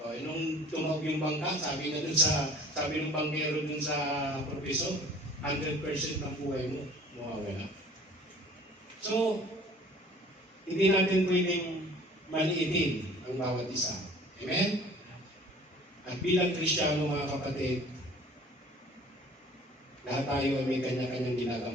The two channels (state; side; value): normal; both; correlation 0.49